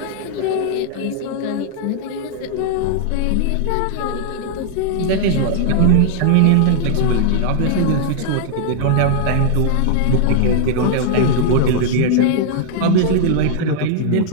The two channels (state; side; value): different; both; correlation -0.01